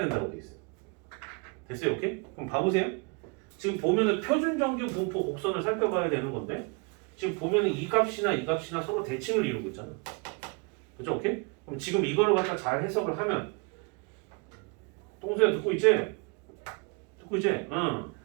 돼 있어요. 됐어요? 오케이? 그럼 봐보세요. 지금 보면은 표준 정규 분포 곡선을 살펴봐야 되는 건데 지금 보면은 이 값이나 이 값이나 서로 대칭을 이루고 있잖아. 그죠? 오케이? 그럼 지금 이거를 갖다 잘 해석을 하면 똥소야 듣고 있지? 듣고 있지? 응.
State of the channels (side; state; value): left; quieter; 32.2 dB